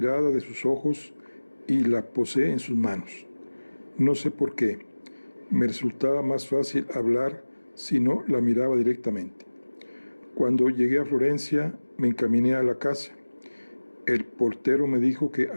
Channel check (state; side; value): inverted; both; correlation -1.00